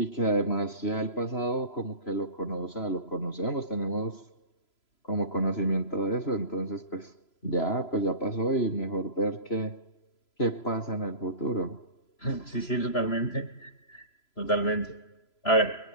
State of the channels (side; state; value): right; late; 3.0 ms